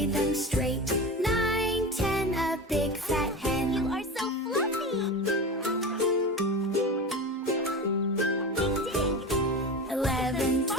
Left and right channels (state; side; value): normal; both; correlation 0.27